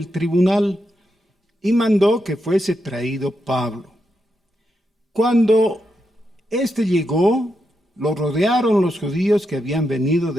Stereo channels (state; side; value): normal; both; correlation 0.84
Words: tribunal y mandó que fuese traído Pablo. Cuando éste llegó, lo rodearon los judíos que habían venido